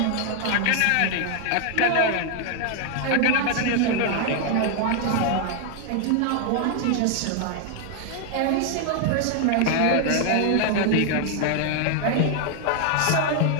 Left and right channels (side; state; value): both; different; correlation 0.00